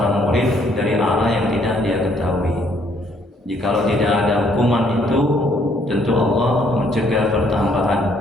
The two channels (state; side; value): normal; both; correlation 0.66